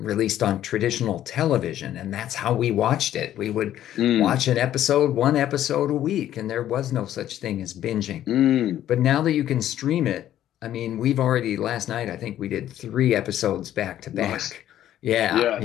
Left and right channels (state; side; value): quieter; right; 12.0 dB